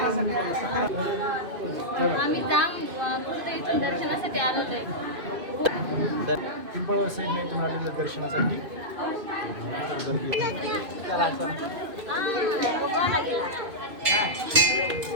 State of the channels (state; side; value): late; left; 2.5 ms